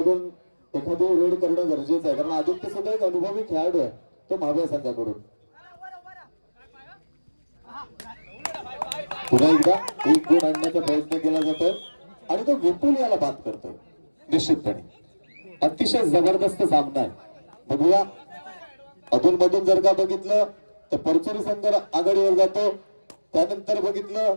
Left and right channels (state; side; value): inverted; both; correlation -1.00